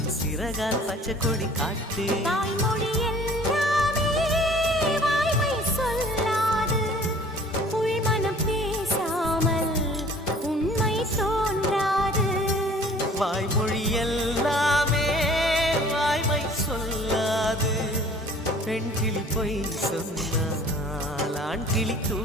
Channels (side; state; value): both; normal; correlation 0.51